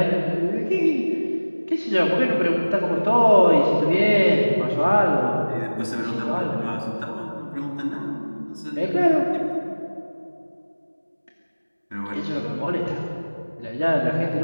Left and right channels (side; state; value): both; inverted; correlation -1.00